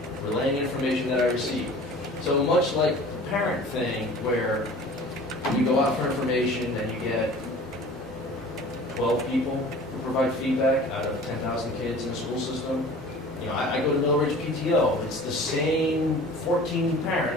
relaying information that I received. So much like the parent thing, where you go out for information and you get 12 people who provide feedback out of 10,000 kids in the school system. I go to Mill Ridge PTO. It's the same 14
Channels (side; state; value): both; normal; correlation 0.44